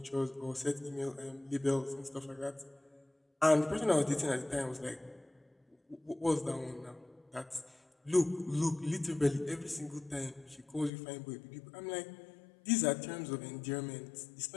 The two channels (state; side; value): drops out; right; at 10.9 s